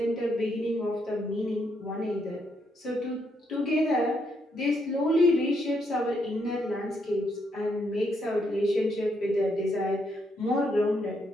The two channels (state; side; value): normal; both; correlation 0.76